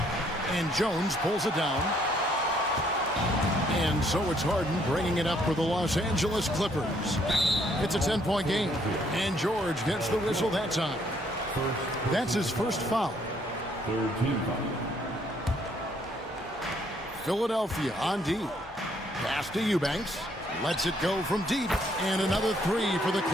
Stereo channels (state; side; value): normal; both; correlation 0.67